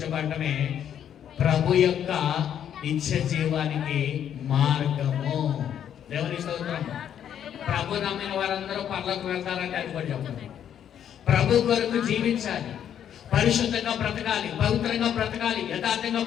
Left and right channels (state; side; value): quieter; right; 9.5 dB